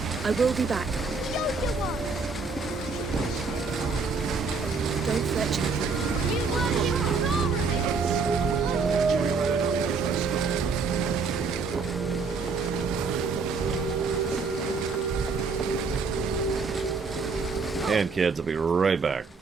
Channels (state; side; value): quieter; left; 4.6 dB